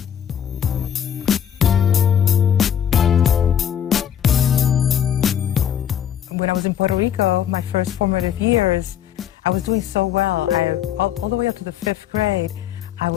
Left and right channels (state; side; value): quieter; right; 9.5 dB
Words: When I was in Puerto Rico, my first formative years, I was doing so well. All the way up to the 5th grade, I